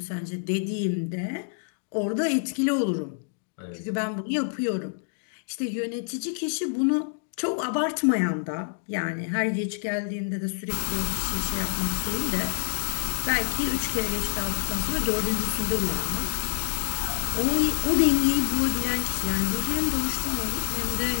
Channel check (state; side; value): silent; right; digital silence